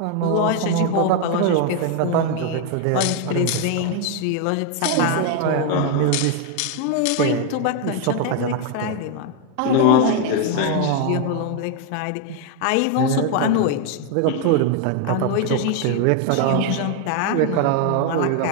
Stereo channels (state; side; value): different; both; correlation 0.01